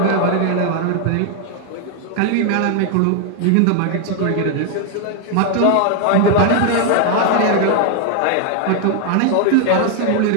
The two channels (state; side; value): different; both; correlation 0.00